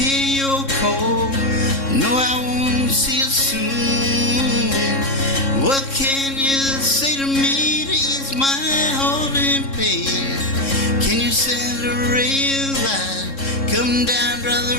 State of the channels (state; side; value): late; right; 3.7 ms